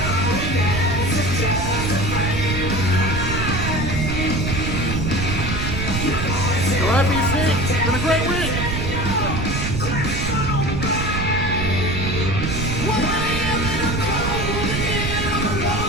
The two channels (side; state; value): right; noise; rumble, 2 dB below the sound